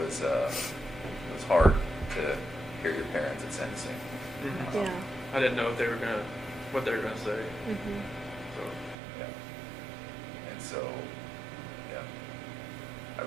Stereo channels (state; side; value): drops out; left; at 9.0 s